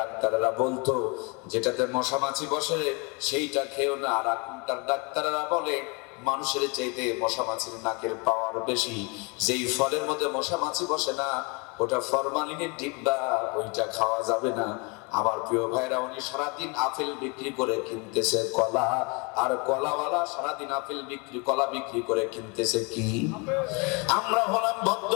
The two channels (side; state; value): right; quieter; 30.8 dB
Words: বলতো যেটাতে মশা মাছি বসে সেইটা খেও না, আর এখনকার ডাক্তাররা বলে মানুষের চাইতে মশা মাছির নাকের পাওয়ার বেশি, যেই ফলের মধ্যে মশা মাছি বসে না ওটা ফরমালিনের ডিব্বা, ওইটা খাওয়া যাবে না। আমার প্রিয় ভাইরা, উনি সারাদিন আপেল বিক্রি করে কিনতেছে কলা, আর কলাওয়ালা সারাদিন আপেল বিক্রি, কলা বিক্রি করে কিনতেছে কি? আমরা হলাম